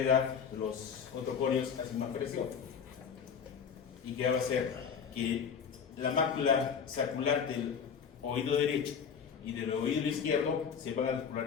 los otoconios hacen más presión. ¿Y qué va a hacer? que la mácula sacral del oído derecho y del oído izquierdo se van a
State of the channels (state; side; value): quieter; right; 6.8 dB